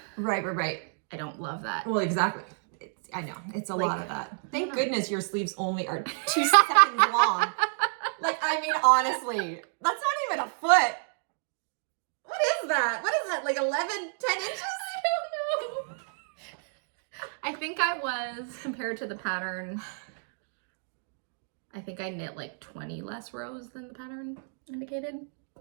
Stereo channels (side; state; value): left; silent; digital silence